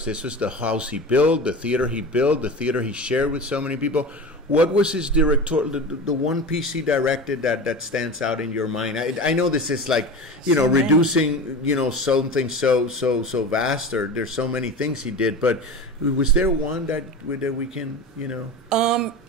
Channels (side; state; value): both; normal; correlation 0.30